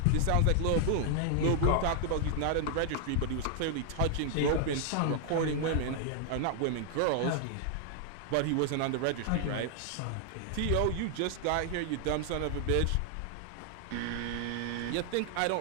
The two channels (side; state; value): both; different; correlation 0.00